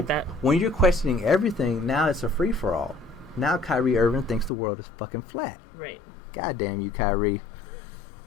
that. When you're questioning everything, now it's a free for all. Now Kyrie Irving thinks the world is fucking flat. Right. God damn you, Kyrie.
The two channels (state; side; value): drops out; right; at 4.5 s